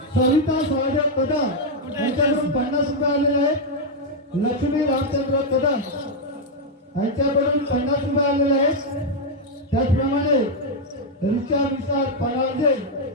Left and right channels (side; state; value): both; normal; correlation -0.01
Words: सविता सहदेव कदम यांच्याकडून 50 रुपये आलेले आहेत. लक्ष्मी रामचंद्र कदम यांच्याकडून 50 रुपये आलेले आहेत. त्याचप्रमाणे रिचा विशाल परांजे